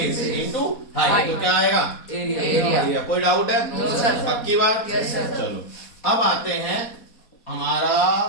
into height. तो क्या आएगा? एरिया। कोई डाउट है? No sir. पक्की बात? Yes sir. चलो अब आते हैं हमारा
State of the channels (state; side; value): late; right; 4.2 ms